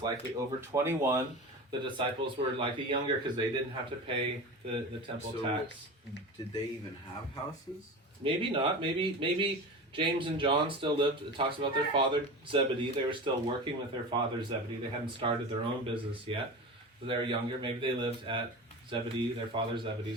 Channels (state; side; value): normal; both; correlation 0.30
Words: likely over 21. The disciples were likely younger because they didn't have to pay the temple So- tax. Did they even have houses? Maybe not. Maybe James and John still lived. It talks about their father Zebedee. They were still working with their father Zebedee. They hadn't started their own business yet. So they were younger. Maybe they lived at Zebedee, their father